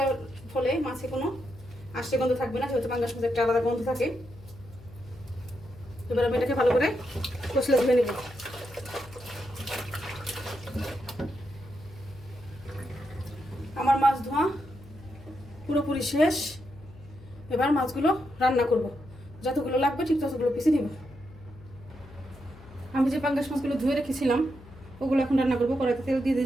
ফলে মাছে কোনো আষ্টে গন্ধ থাকবে না, যেহেতু পাঙ্গাস মাছে একটা আলাদা গন্ধ থাকে। এবার আমি এটাকে ভালো করে কষলে ধুয়ে নেব। আমার মাছ ধোয়া পুরোপুরি শেষ। এবার মাছগুলো রান্না করব। যতগুলো লাগবে ঠিক ততগুলো পিসে নিব। আমি যে পাঙ্গাস মাছগুলো ধুয়ে রেখেছিলাম ওগুলো এখন রান্না করবো। কড়াইতে তেল দিয়ে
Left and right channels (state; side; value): noise; left; hum, 20 dB below the sound